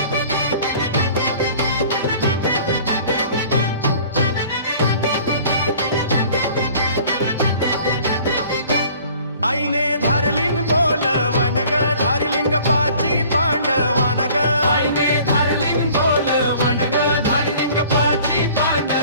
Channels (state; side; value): inverted; both; correlation -0.50